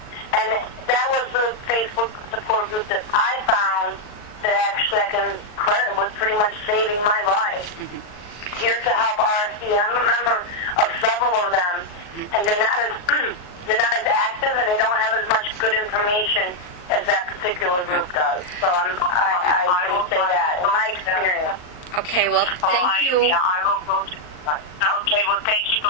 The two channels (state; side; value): late; right; 39 ms